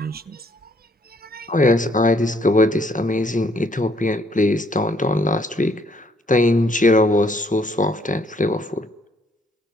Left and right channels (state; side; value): normal; both; correlation 0.67